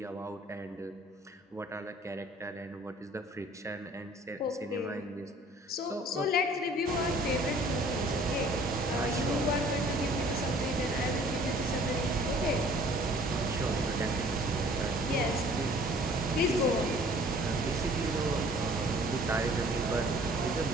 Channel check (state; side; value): normal; both; correlation 0.53